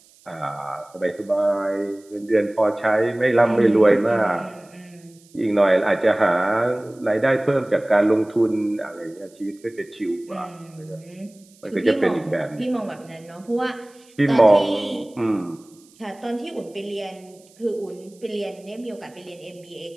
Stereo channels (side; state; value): right; noise; hiss, 29 dB below the sound